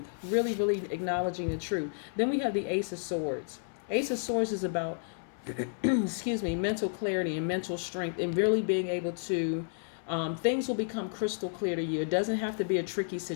Really acknowledging the truth. Then we have the Ace of Swords. Ace of Swords is about, mental clarity and mental strength, and really being able to, things will become crystal clear to you. It doesn't have to be a tricky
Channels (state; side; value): silent; right; 57 dB below the other